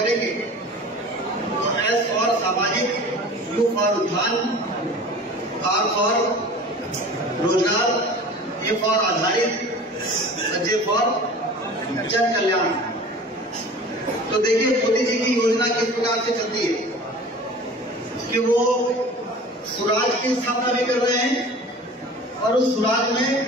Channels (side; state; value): both; normal; correlation 0.41